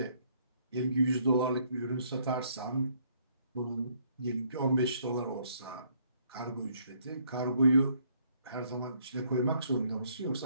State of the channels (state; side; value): inverted; both; correlation -0.67